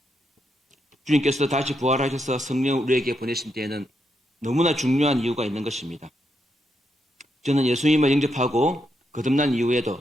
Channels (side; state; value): both; normal; correlation 0.81